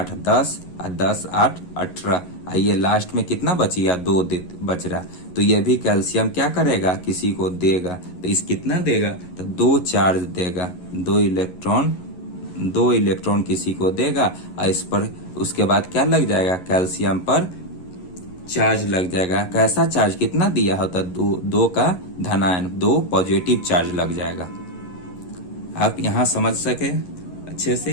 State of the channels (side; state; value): right; late; 11 ms